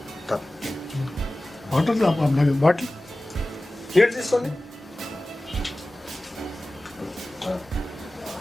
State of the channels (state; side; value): normal; both; correlation 0.97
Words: బాటిల్ నీళ్ళు తీసుకోండి.